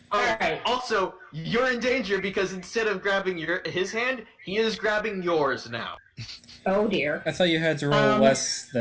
Oh, Alright. Also, you're in danger because instead of grabbing his hand, he is grabbing yours now. Oh dear. I thought you had to roll less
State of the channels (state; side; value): identical; both; correlation 1.00